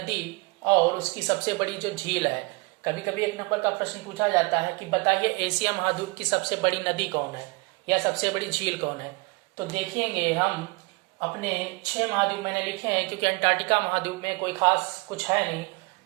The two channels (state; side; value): quieter; left; 27.6 dB